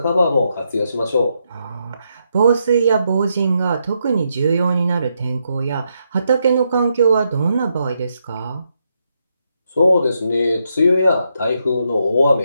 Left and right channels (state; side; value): inverted; both; correlation -0.80